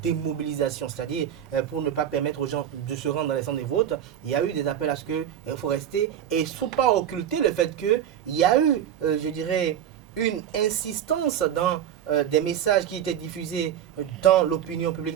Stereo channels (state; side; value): quieter; left; 9.9 dB